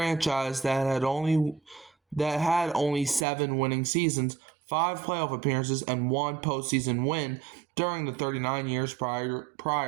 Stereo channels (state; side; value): drops out; left; at 3.2 s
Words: that had only 7 winning seasons, 5 playoff appearances, and 1 postseason win during the 39 years